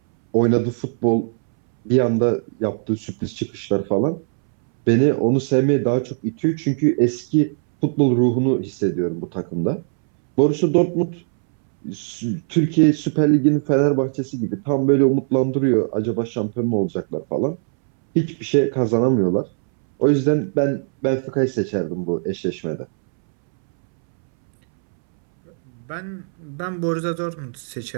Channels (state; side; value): silent; left; 65 dB below the other